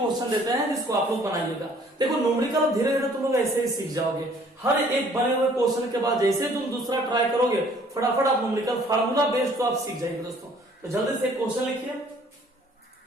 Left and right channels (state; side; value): normal; both; correlation 0.57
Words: देते हैं जिसको आप लोग बनाइएगा। देखो न्यूमेरिकल धीरे धीरे तुम लोग ऐसे ही सीख जाओगे। हर एक बने हुए क्वेश्चन के बाद जैसे तुम दूसरा ट्राई करोगे फटाफट आप न्यूमेरिकल फार्मूला बेस्ड तो आप सीख जाएंगे दोस्तों। तो जल्दी से क्वेश्चन लिखिए,